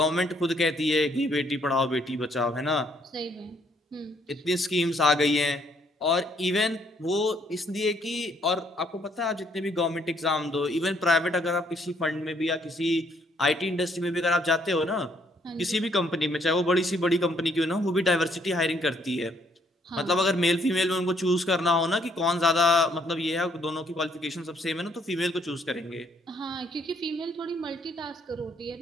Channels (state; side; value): normal; both; correlation 0.67